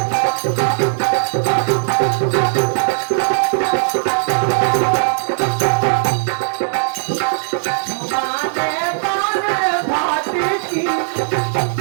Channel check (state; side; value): silent; left; digital silence